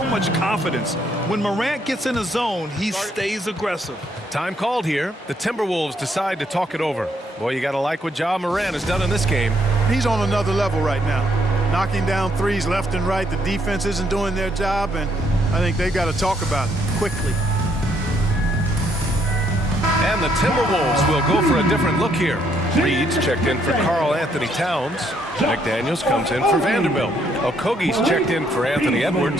much confidence. When Morant gets in a zone, he stays aggressive. Time called here. The Timberwolves decide to talk it over. Boy, you got to like what Ja Morant has done in this game. He's on another level right now. Knocking down threes left and right. The defense isn't doing their job, and I think they've got to talk about it quickly. And the Timberwolves will go for a different look here. Reed's checked in for Karl Anthony Towns. McDaniels comes in for Vanderbilt. Okogie's checked in for Anthony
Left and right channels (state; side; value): normal; both; correlation 0.71